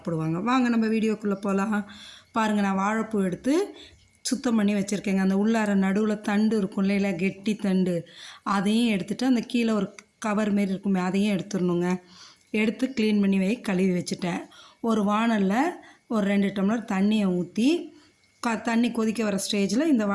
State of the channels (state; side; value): identical; both; correlation 1.00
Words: வாங்க நம்ம வீடியோக்குள்ளே போகலாம். பாருங்கள், நான் வாழைப்பூ எடுத்து சுத்தம் பண்ணி வச்சுருக்கேங்க. அந்த உள்ளார நடுவில் தண்டு இருக்கும் இல்லையா, கெட்டி தண்டு, அதையும் எடுத்துகிட்டு அந்த கீழே ஒரு கவர் மாரி இருக்குமே அதையும் எடுத்துடணுங்க. எடுத்து க்ளீன் பண்ணி கழுவி வச்சுட்டேன். ஒரு வானலில் ஒரு 2 டம்ளர் தண்ணியை ஊற்றி தண்ணி கொதிக்க வர ஸ்டேஜில் இந்த